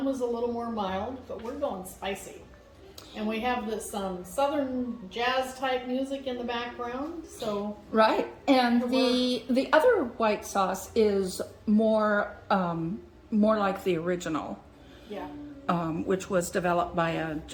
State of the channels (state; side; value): identical; both; correlation 1.00